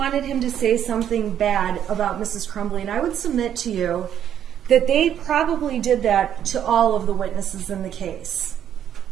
him to say something bad about Mrs. Crumbley. And I would submit to you that they probably did that to all of the witnesses in the case.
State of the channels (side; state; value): left; quieter; 9.8 dB